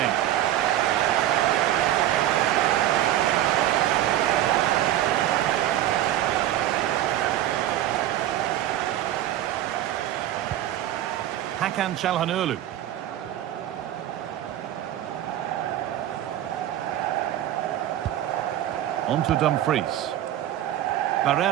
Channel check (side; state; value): left; quieter; 12.7 dB